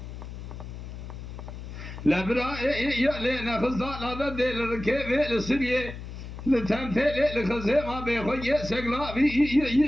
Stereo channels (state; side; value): noise; left; hum, 10 dB below the sound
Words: لبرا يلينا خزال هذا دل ركيب السرية لتمثيل الخزيمة بخوي